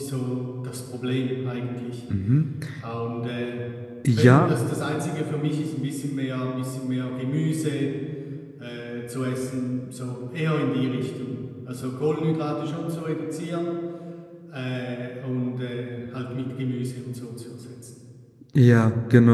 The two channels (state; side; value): identical; both; correlation 1.00